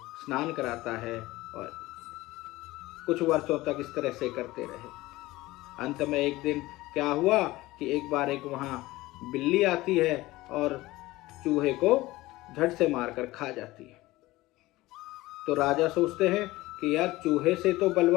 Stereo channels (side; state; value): right; quieter; 18.8 dB